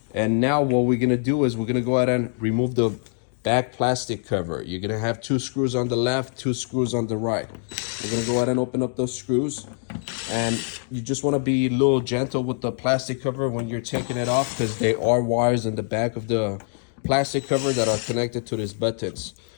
And now what we're gonna do is we're gonna go ahead and remove the back plastic cover. You're gonna have 2 screws on the left, 2 screws on the right. We're gonna go ahead and open up those screws. And you just wanna be a little gentle with the plastic cover when you're taking it off, because there are wires in the back of the plastic cover that are connected to these buttons.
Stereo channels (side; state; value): right; silent; digital silence